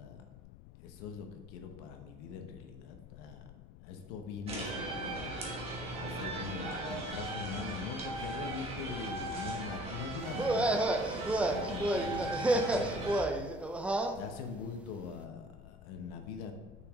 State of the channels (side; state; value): left; noise; rumble, 17 dB below the sound